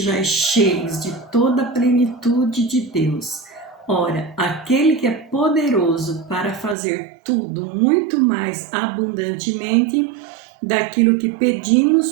cheios de toda a plenitude de Deus. Ora, aquele que é poderoso para fazer tudo muito mais abundantemente daquilo que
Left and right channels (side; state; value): left; drops out; at 6.8 s